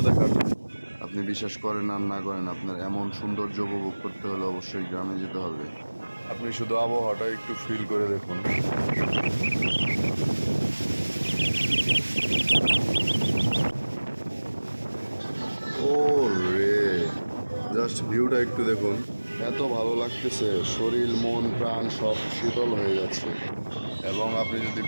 দেখার। আপনি বিশ্বাস করেন আর না করেন, আপনার এমন সৌন্দর্য উপভোগ করতে হলে অবশ্যই গ্রামে যেতে হবে। আপনি শুধু আবহাওয়াটা একটু ফিল করে দেখুন। ও রে, জাস্ট ভিউটা একটু দেখুন। এত ভালো লাগতেছে, শরীর মন প্রাণ সব শীতল হয়ে যাচ্ছে। এবং আপনি যদি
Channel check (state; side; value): inverted; both; correlation -1.00